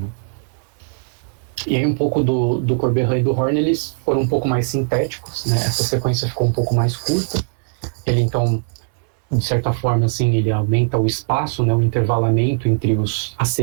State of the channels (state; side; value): silent; left; 62 dB below the other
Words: E aí um pouco do Corberan e do Horn, eles foram um pouco mais sintéticos, né, essa sequência ficou um pouco mais curta, ele então, de certa forma, assim, ele aumenta o espaço, né, o intervalamento entre as